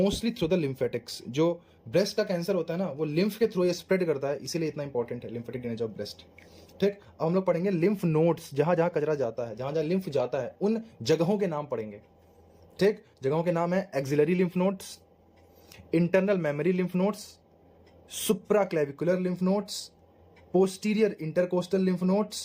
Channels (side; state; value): both; identical; correlation 1.00